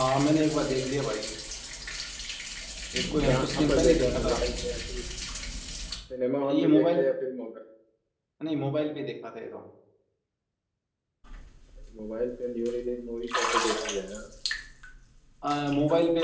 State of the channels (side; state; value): both; identical; correlation 1.00